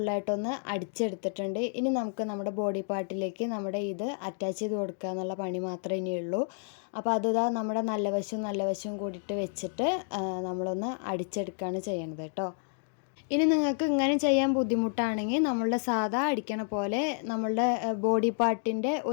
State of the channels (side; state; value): right; silent; digital silence